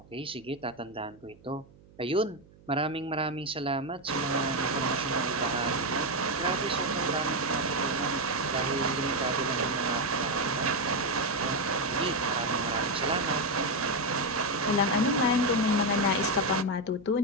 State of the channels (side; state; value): right; noise; hum, 25 dB below the sound